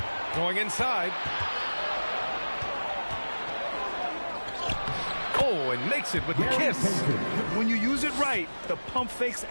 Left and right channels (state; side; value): inverted; both; correlation -1.00